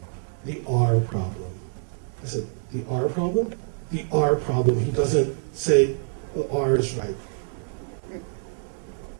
the R problem. I said, the R problem? The R problem. He doesn't say the R is right.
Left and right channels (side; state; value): left; silent; digital silence